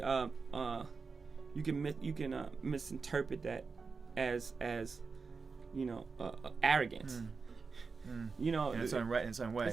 you can misinterpret that as arrogance. In its own way.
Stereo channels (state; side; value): quieter; left; 4.7 dB